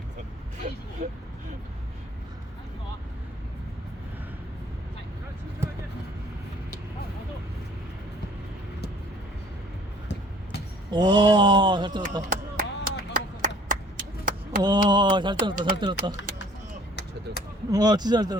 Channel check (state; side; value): normal; both; correlation 0.55